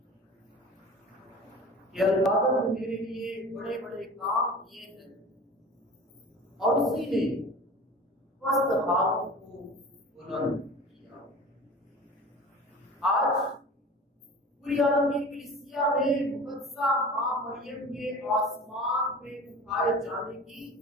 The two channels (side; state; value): both; normal; correlation 0.38